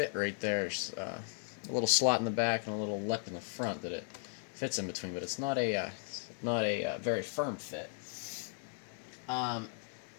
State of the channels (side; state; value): right; silent; 54 dB below the other